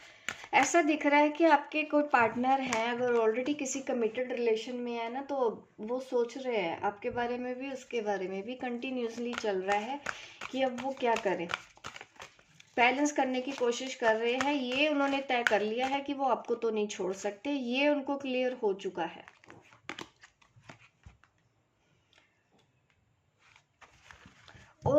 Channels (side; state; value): both; identical; correlation 1.00